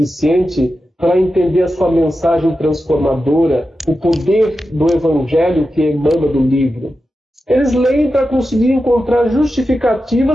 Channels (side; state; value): both; normal; correlation 0.91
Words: para entender a sua mensagem transformadora, o poder do Evangelho que emana do livro. Eles leem para conseguir encontrar